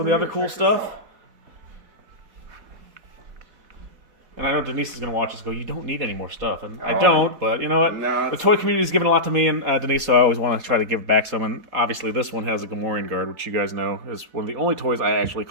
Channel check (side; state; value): left; late; 4.1 ms